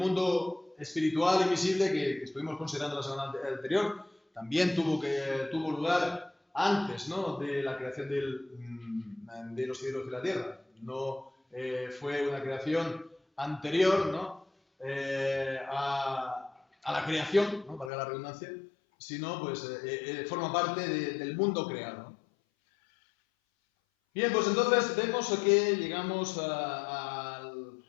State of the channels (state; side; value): drops out; right; at 17.9 s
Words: espiritual y visible que estuvimos considerando la semana anterior, también tuvo lugar antes, ¿no?, de la creación de los cielos y la tierra. No fue una creación anterior, ¿no?, a la creación, ¿no?, valga la redundancia, sino pues forma parte del mundo creado. Bien, pues entonces vemos que llegamos a